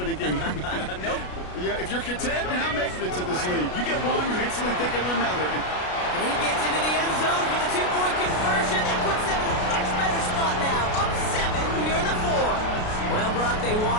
a game. Nope. Yeah, if you're content, you're not making it to this league. You get 1, you instantly think of another. And he gets into the end zone for the 2-point conversion. That puts them in a much better spot now. Up 7 here in the 4th. Well, Brock, they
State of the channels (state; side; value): late; right; 33 ms